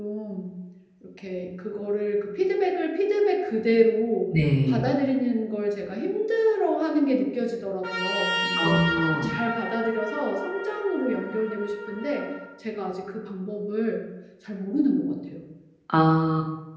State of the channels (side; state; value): both; identical; correlation 1.00